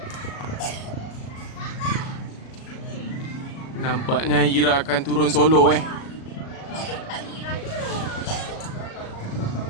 Nampaknya Ira akan turun solo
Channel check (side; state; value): right; late; 37 ms